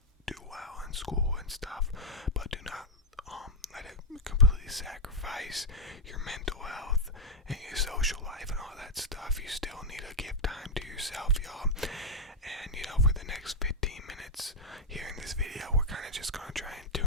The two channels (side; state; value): both; normal; correlation 0.02